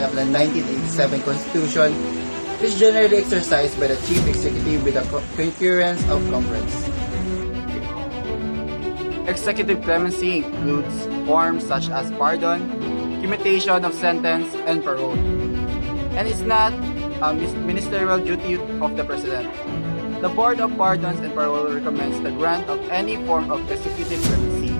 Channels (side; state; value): both; inverted; correlation -1.00